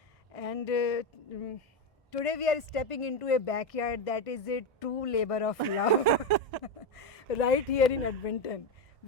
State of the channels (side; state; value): both; normal; correlation 0.11